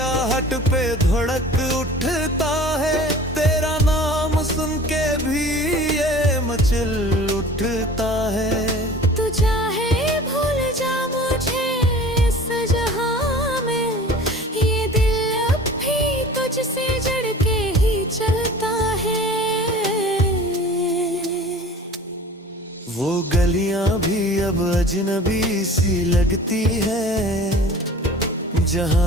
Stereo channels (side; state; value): both; normal; correlation 0.43